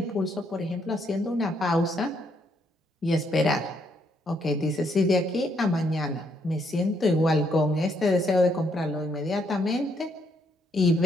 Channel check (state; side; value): normal; both; correlation 0.73